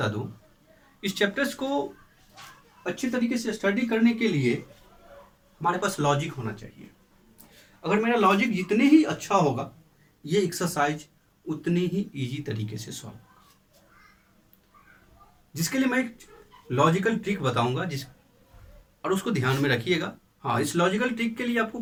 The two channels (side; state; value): both; identical; correlation 1.00